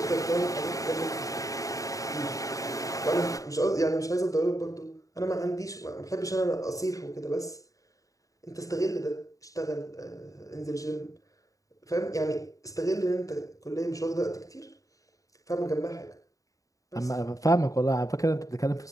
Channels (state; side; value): late; right; 0.16 ms